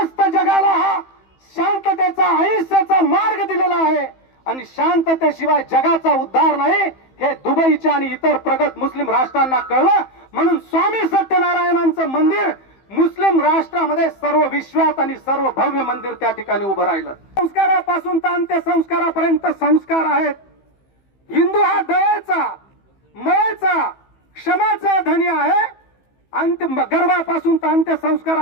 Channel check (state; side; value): late; right; 15 ms